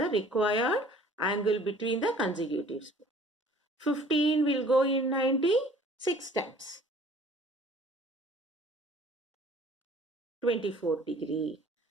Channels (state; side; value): normal; both; correlation 0.52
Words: required angle between the consecutive spokes. 15 will go in 90 6 times. 24 degree.